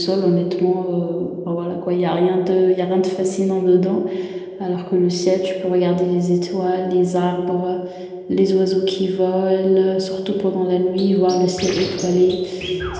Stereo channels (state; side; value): identical; both; correlation 1.00